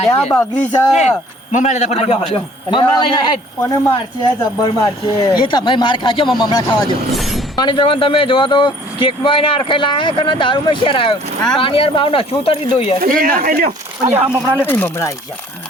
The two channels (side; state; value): both; normal; correlation 0.55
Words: બગડી છે મમરા લેતા ફટાફટ મમરા લઈને હેડ કોને મારશે જબ્બર મારશે એ તમે માર ખાજો મમરા ખાવા દો માની જવાન તમે જોવા તો કેક માં એને અરખાઈ લાયા કે દારૂ માં શેર આવ્યો પાણી યાર ભાવ ના શું ઉતરી દો યાર મમરા લે મમરા આવી ગયા